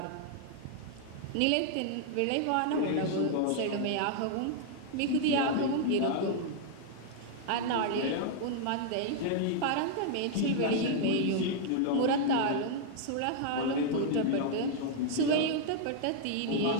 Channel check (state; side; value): different; both; correlation 0.00